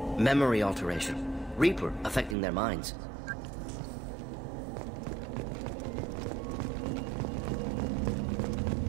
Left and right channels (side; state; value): left; drops out; at 2.4 s